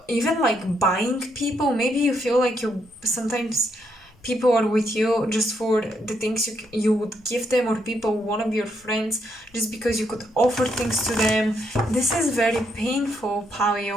even like buying people. Maybe you feel like you sometimes people are with you just for the things you would give them, or people want to be your friends just because you could offer things to them. This is very painful,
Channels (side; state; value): both; normal; correlation 0.76